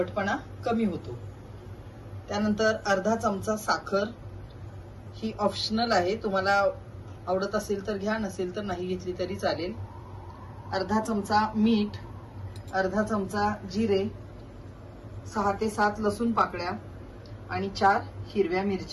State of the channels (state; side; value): identical; both; correlation 1.00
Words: कमी होतो। त्यानंतर अर्धा चमचा साखर, ही ऑप्शनल आहे, तुम्हाला आवडत असेल तर घ्या, नसेल तर नाही घेतली तरी चालेल। अर्धा चमचा मीठ, अर्धा चमचा जिरे, 6 ते 7 लसूण पाकळ्या आणि 4 हिरव्या